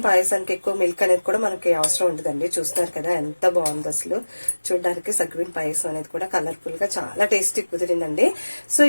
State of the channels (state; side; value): inverted; both; correlation -1.00